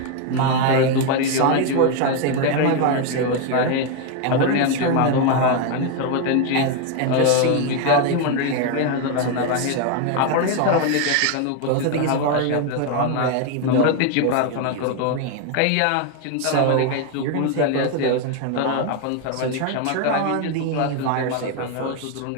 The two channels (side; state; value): both; different; correlation 0.01